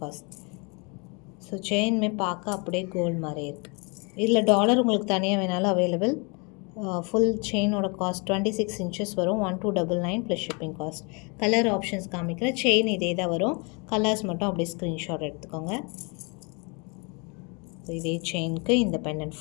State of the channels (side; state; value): right; quieter; 32.0 dB